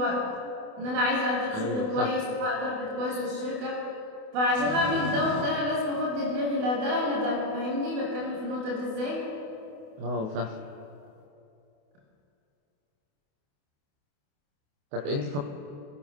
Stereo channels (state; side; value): late; left; 28 ms